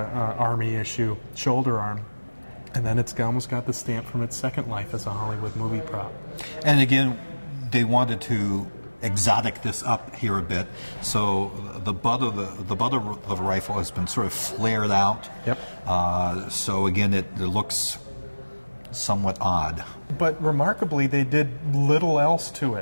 Army issue shoulder arm, and then it's almost got the stamp from its second life as a Hollywood movie prop. And again, they wanted to exotic this up here a bit, so the butt of the rifle has been sort of flared out. So again, it looks somewhat odd. But remarkably, they did little else to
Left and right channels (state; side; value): inverted; both; correlation -1.00